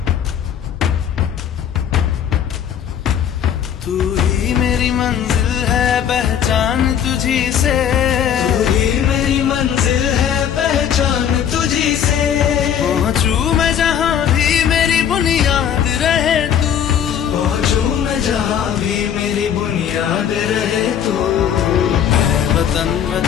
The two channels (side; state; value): right; quieter; 9.0 dB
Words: तू ही मेरी मंजिल है पहचान तुझी से, तू ही मेरी मंजिल है पहचान तुझी से। पहुँचूं मैं जहाँ भी मेरी बुनियाद रहे तू, पहुँचूं मैं जहाँ भी मेरी बुनियाद रहे तू। है वतन